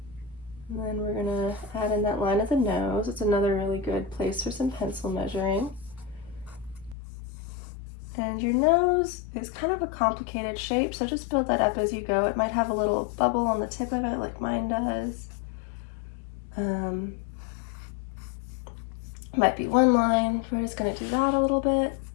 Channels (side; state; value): right; drops out; at 7.0 s